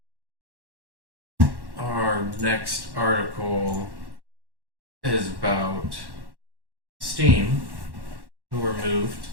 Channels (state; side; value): late; left; 1.1 ms